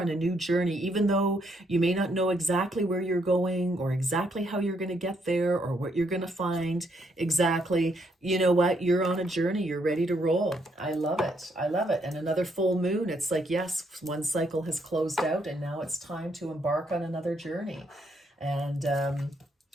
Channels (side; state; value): both; normal; correlation 0.74